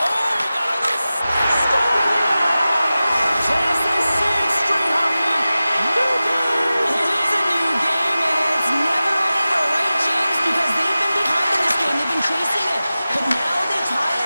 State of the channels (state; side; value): inverted; both; correlation -0.95